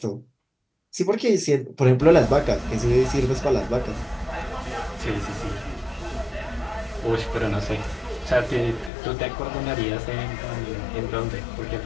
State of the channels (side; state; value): right; drops out; at 8.9 s